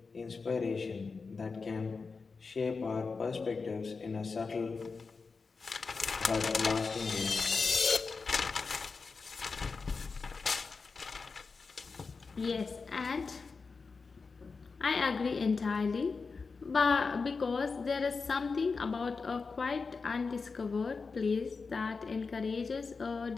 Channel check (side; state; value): right; quieter; 4.6 dB